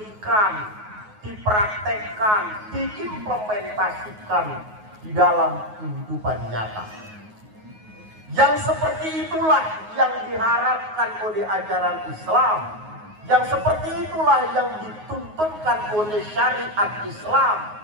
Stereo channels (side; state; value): left; late; 9.4 ms